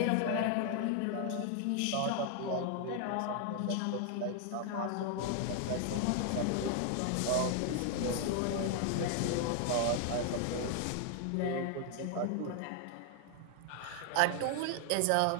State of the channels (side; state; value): both; different; correlation 0.00